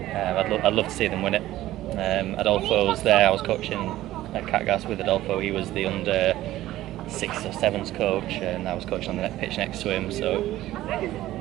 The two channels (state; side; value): quieter; left; 15.0 dB